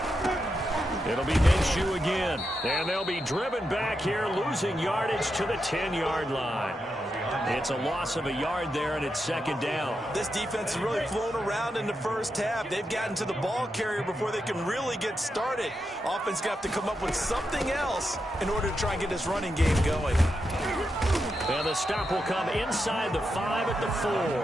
It'll be Minshew again, and they'll be driven back here, losing yardage to the 10-yard line. It's a loss of a yard there, and it's second down. This defense has really flown around in the first half. They've gotten to the ball carrier before they can really get started. Offense got to come up with something else in order to try and get this running game going. And the stop will come inside the 5 at the 4.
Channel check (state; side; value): normal; both; correlation 0.86